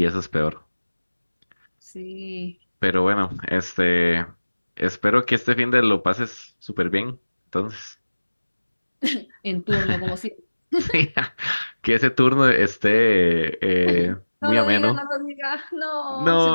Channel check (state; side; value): inverted; both; correlation -1.00